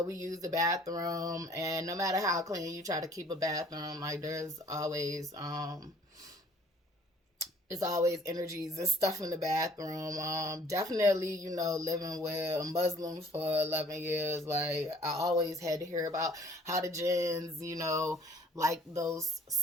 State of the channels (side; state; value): both; normal; correlation 0.55